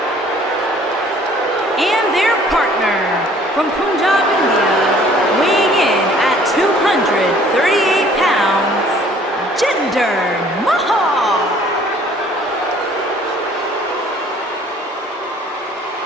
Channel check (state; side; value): normal; both; correlation 0.56